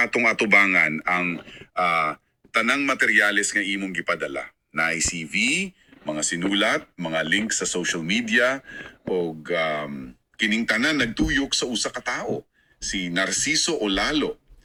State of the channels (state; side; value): identical; both; correlation 1.00